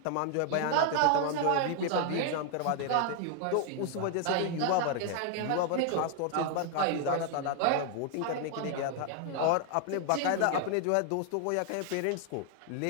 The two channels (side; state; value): both; different; correlation 0.00